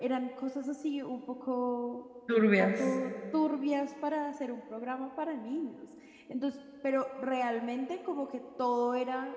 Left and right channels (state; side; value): identical; both; correlation 1.00